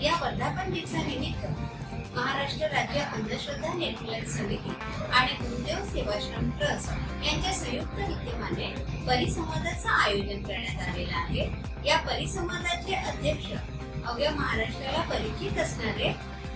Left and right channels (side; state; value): both; identical; correlation 1.00